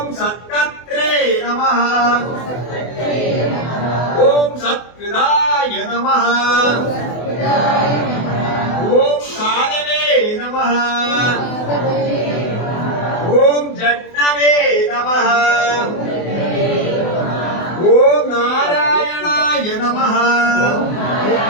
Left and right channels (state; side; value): late; right; 24 ms